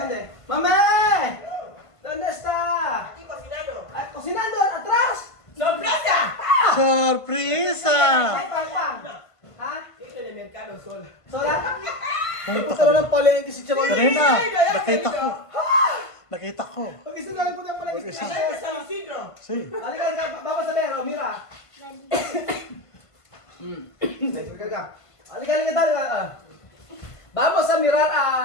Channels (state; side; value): late; right; 1.5 ms